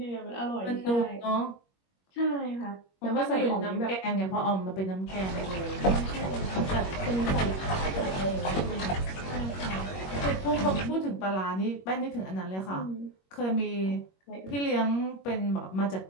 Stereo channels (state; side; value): late; right; 21 ms